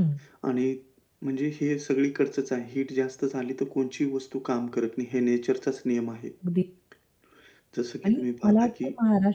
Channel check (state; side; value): identical; both; correlation 1.00